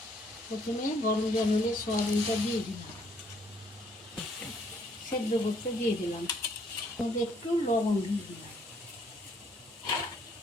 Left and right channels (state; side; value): normal; both; correlation 0.66